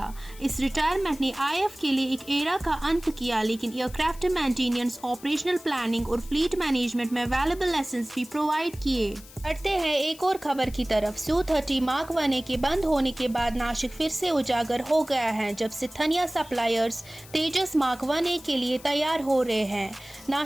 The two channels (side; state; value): left; noise; hiss, 20 dB below the sound